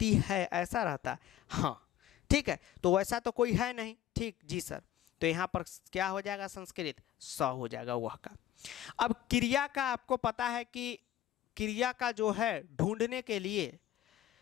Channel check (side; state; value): right; quieter; 12.4 dB